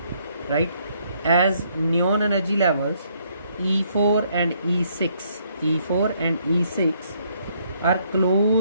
right? As neon energy levels E4 and E6 are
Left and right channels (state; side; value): inverted; both; correlation -0.69